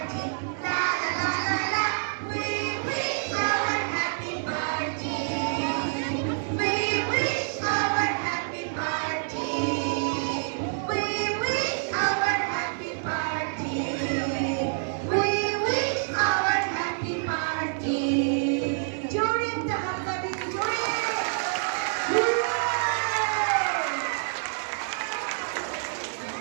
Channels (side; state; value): left; silent; digital silence